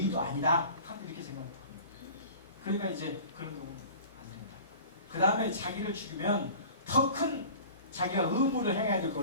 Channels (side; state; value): both; inverted; correlation -0.41